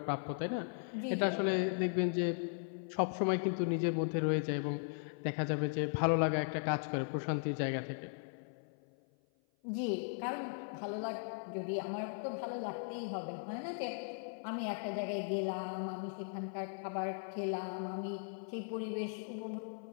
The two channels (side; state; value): right; silent; 53 dB below the other